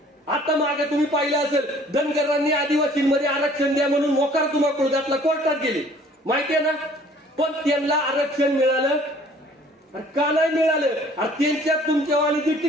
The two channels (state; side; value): normal; both; correlation 0.55